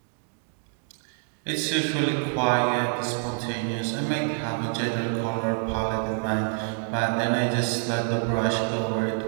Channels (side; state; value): left; silent; 60 dB below the other